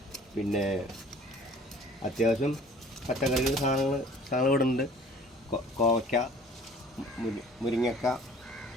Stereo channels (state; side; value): normal; both; correlation 0.50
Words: പിന്നെ അത്യാവശ്യം പച്ചക്കറികൾ സാധനങ്ങൾ ഇവിടെ ഉണ്ട്. കോവയ്ക്ക, മുരിങ്ങക്ക,